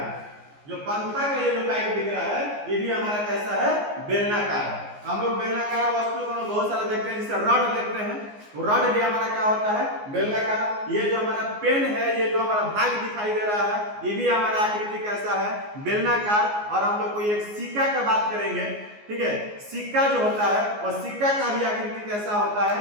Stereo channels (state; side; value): late; left; 14 ms